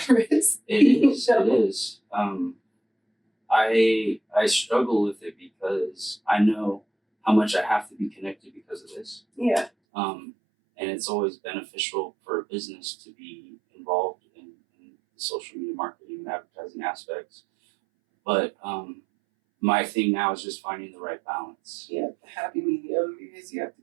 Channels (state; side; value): drops out; left; at 9.7 s